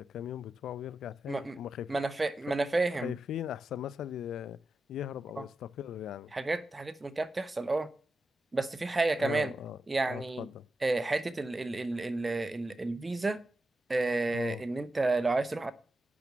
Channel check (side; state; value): both; normal; correlation 0.90